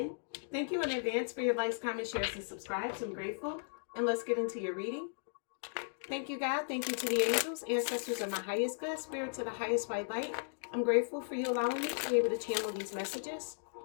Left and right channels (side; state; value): right; silent; digital silence